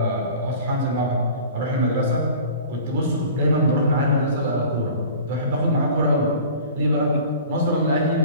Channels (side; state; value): both; inverted; correlation -0.42